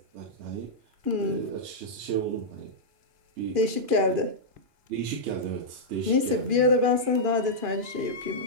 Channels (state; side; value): late; left; 2.4 ms